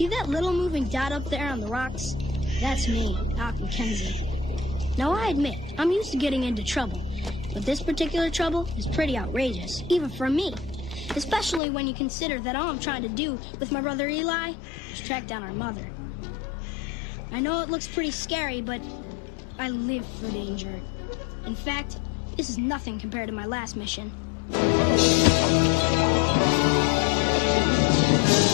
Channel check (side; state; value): right; drops out; at 11.6 s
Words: that little moving dot up there on the rocks? That's me, Doc McKenzie. Now, I admit, I'm used to getting into trouble, but this particular trouble is pretty outrageous, even for me. Especially when you consider that all I'm trying to do with my brother Eli is track down our mother. I know it looks pretty scary, but I live for danger. In fact, this is nothing compared to my last mission.